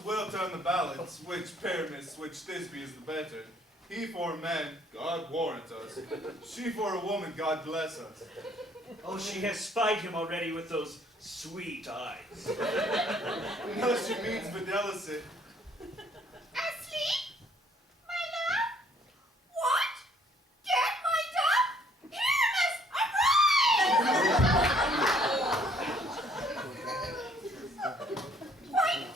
will turn the balance, which Pyramus, which Thisbe is the better. He for a man, God warrant us. She for a woman, God bless us. Oh, she has spied him already with those sweet eyes. No, she means fidelity. Asleep? My love? What? Get my dog? Pyramus, arise! White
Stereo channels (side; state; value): both; normal; correlation 0.62